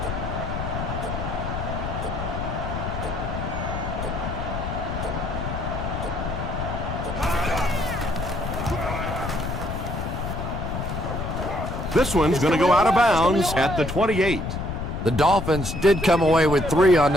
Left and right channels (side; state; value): left; noise; rumble, 5 dB below the sound